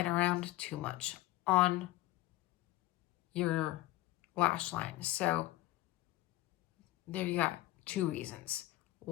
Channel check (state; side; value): quieter; right; 17.4 dB